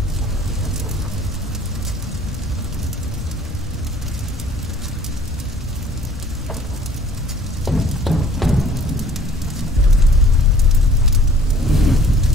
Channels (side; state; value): both; normal; correlation 0.54